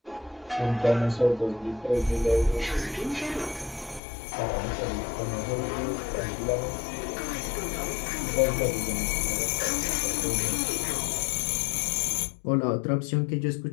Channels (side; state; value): right; drops out; at 4.0 s